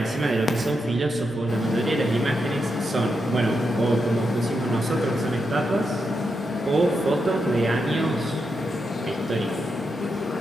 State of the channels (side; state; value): both; normal; correlation 0.84